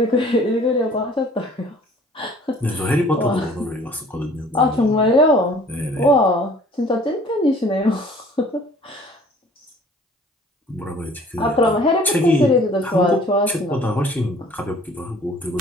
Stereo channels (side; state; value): both; normal; correlation 0.52